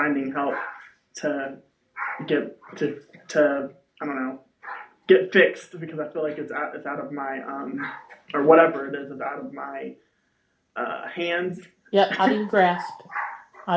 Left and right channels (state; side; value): identical; both; correlation 1.00